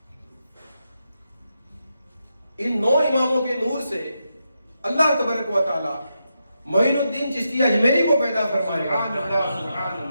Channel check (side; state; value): both; inverted; correlation -0.85